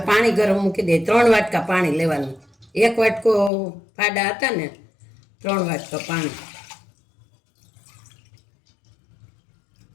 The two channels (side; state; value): right; drops out; at 3.5 s